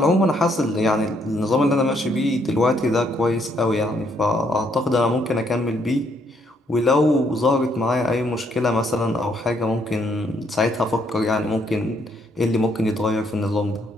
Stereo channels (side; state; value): both; normal; correlation 0.71